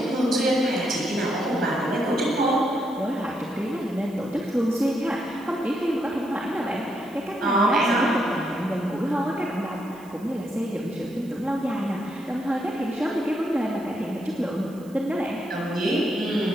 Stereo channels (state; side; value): noise; right; hiss, 26 dB below the sound